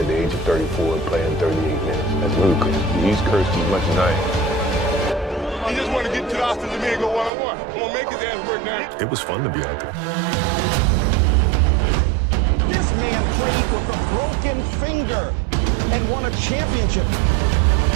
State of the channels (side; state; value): left; drops out; at 7.3 s